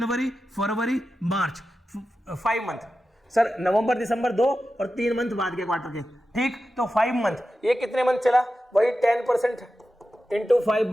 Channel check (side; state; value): both; normal; correlation 0.92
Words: फरवरी, मार्च, 5 मंथ सर, नवंबर, दिसंबर 2 और 3 मंथ बाद के क्वार्टर के, ठीक, तो 5 मंथ, ये कितने मंथ चला, वही 10% इंटू